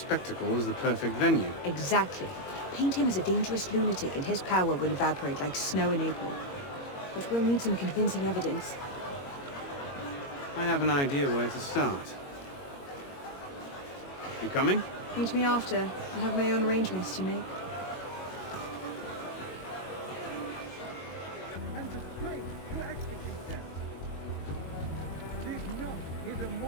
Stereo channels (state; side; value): late; right; 21 ms